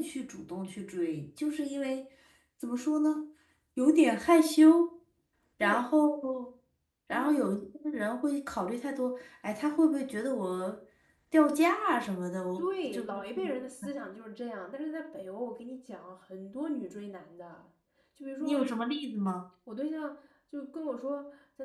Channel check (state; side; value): identical; both; correlation 1.00